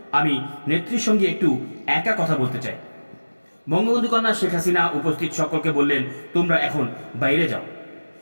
আমি নেত্রীর সঙ্গে একটু একা কথা বলতে চাই। বঙ্গবন্ধু কন্যা শেখ হাসিনা উপস্থিত সকলকে বললেন, তোমরা এখন বাইরে যাও।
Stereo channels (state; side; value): inverted; both; correlation -1.00